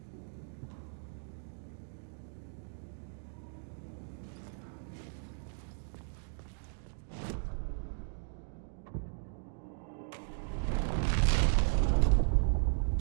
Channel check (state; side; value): silent; left; digital silence